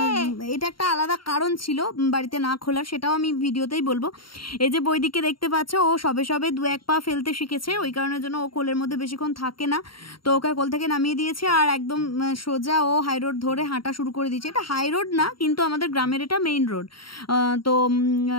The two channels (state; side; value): late; right; 0.73 ms